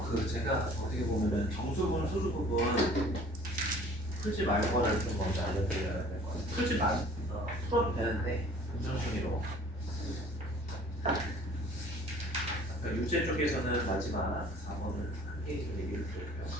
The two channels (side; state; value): both; normal; correlation 0.51